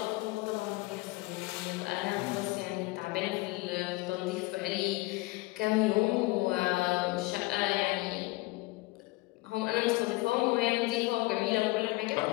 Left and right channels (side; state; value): right; quieter; 22.0 dB